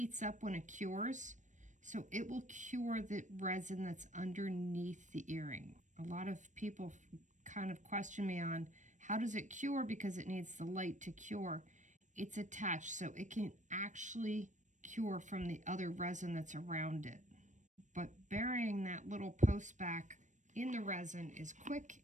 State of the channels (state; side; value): late; left; 0.35 ms